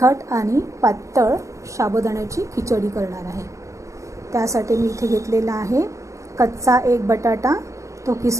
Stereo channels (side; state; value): left; late; 0.15 ms